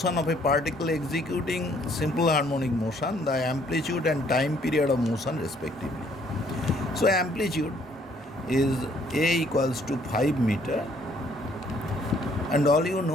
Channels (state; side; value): normal; both; correlation 0.64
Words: of a particle executing simple harmonic motion, the amplitude and time period of motion respectively. So amplitude is a equals to 5 meter, and all you